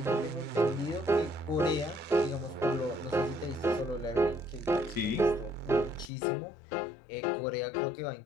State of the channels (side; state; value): right; drops out; at 6.1 s